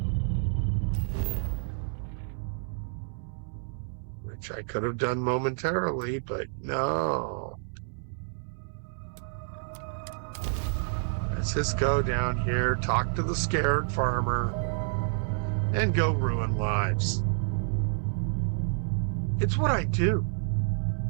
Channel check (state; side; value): silent; left; digital silence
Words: Which I could have done momentarily, but no. Let's just go down here, talk to the scared farmer, and go ruin lives. It's what I do.